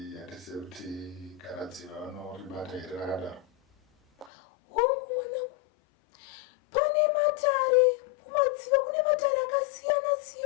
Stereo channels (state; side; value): drops out; right; at 4.3 s